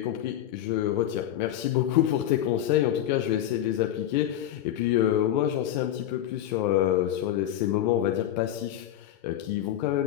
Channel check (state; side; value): quieter; right; 11.8 dB